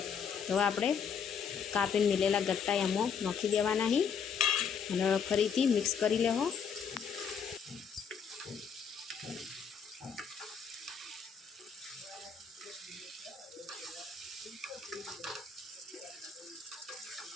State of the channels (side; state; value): right; quieter; 6.8 dB